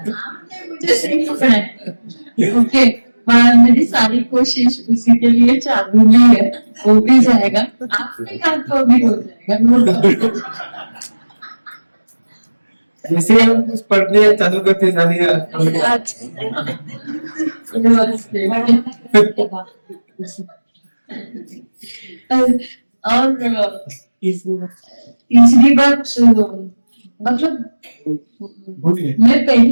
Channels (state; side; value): inverted; both; correlation -1.00